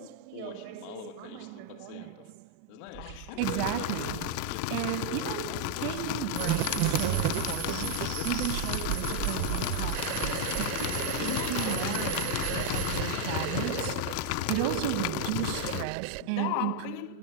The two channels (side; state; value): both; different; correlation 0.00